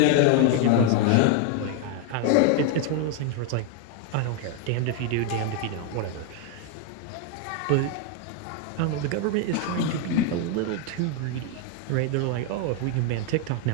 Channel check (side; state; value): both; different; correlation 0.01